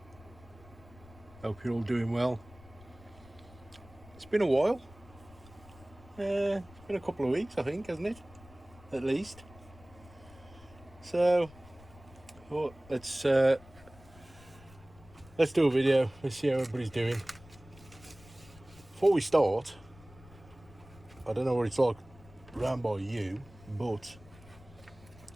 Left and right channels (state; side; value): noise; left; rumble, 22 dB below the sound